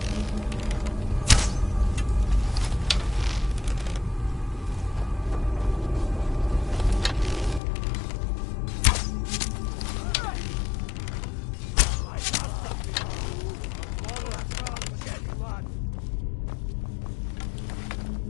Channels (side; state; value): right; drops out; at 7.6 s